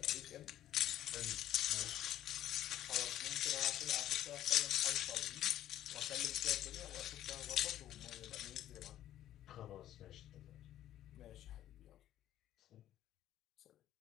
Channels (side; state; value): right; quieter; 12.5 dB